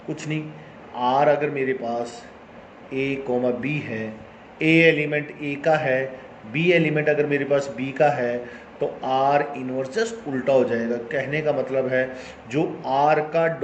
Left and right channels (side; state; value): both; identical; correlation 1.00